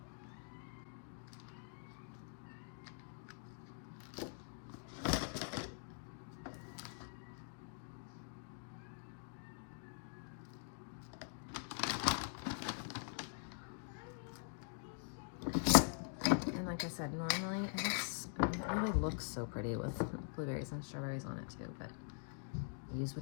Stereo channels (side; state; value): right; silent; digital silence